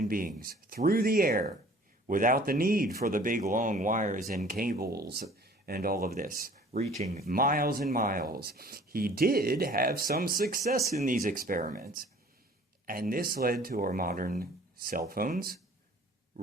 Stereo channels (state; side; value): normal; both; correlation 0.51